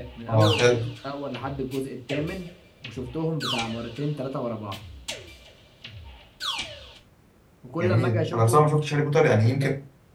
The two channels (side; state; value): both; identical; correlation 1.00